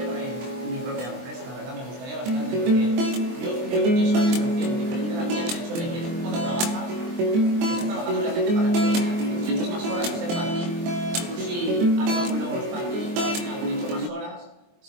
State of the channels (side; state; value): left; late; 23 ms